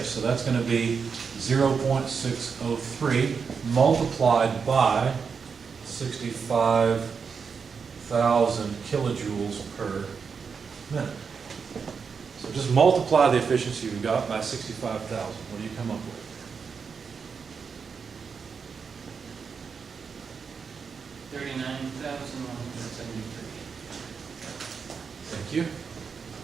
So that's going to be 0.603 multiplied by 65,000 kilojoules per minute. So just multiply the efficiency you got by 65,000. What do you come up with? $39,173. Thank you.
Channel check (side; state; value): left; quieter; 5.8 dB